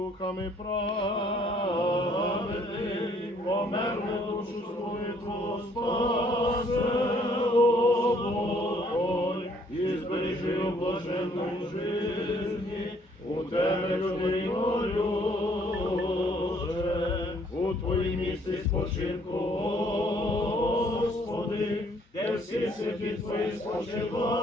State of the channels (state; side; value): normal; both; correlation 0.64